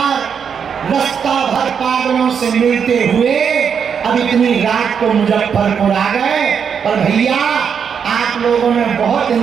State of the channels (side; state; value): left; quieter; 7.0 dB